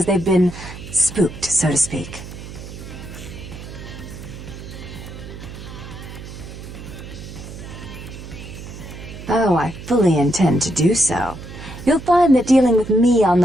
they've been spooked, so to speak. Oh, I fully intend to do so. You'll find that dealing with me on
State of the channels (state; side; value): noise; right; hum, 12 dB below the sound